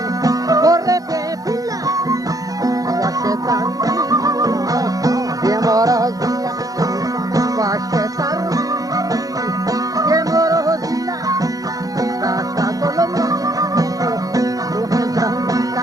gorre te pilla washetan Demorozilla, vashetar. Demorozilla, dashta kolomni.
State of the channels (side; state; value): left; late; 0.17 ms